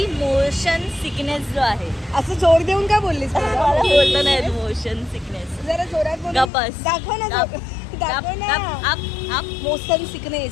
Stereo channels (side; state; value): right; drops out; at 6.5 s